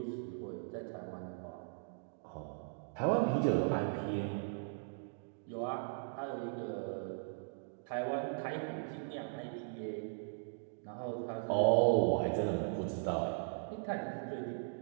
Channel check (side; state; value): left; silent; digital silence